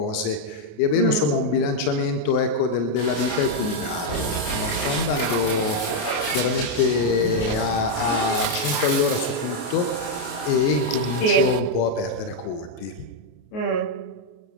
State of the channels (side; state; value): right; late; 28 ms